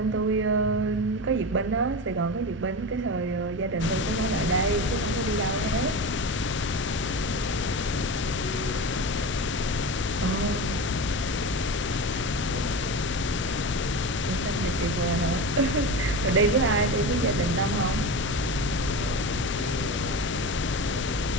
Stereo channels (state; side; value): normal; both; correlation 0.26